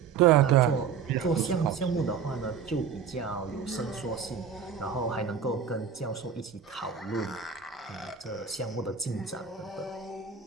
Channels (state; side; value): quieter; left; 6.9 dB